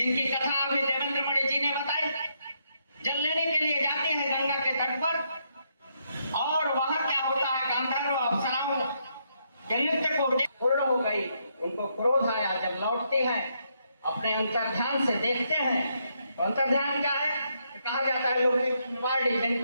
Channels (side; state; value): both; inverted; correlation -0.77